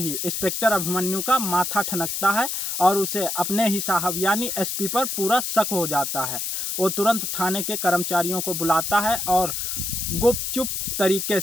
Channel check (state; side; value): noise; left; hiss, 2 dB below the sound